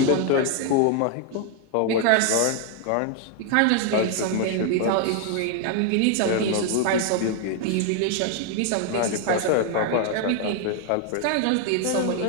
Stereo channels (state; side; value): different; both; correlation 0.00